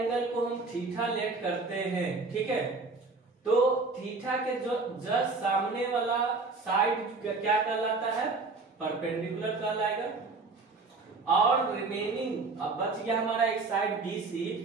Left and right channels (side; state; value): left; quieter; 3.9 dB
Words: को हम थीटा लेट करते हैं, ठीक है, तो थीटा के जो जस्ट सामने वाला साइड क्या कहलाता है? परपेंडिकुलर कहलाएगा। और रिमेनिंग अब बच गया हमारा एक साइड BC,